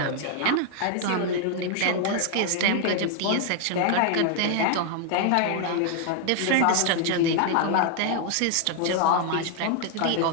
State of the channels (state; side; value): different; both; correlation 0.00